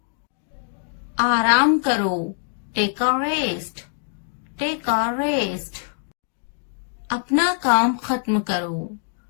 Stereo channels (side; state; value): right; silent; 63 dB below the other